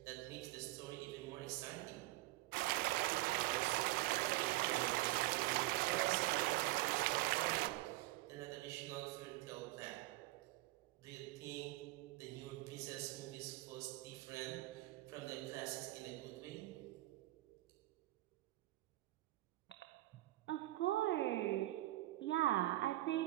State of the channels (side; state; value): left; quieter; 18.6 dB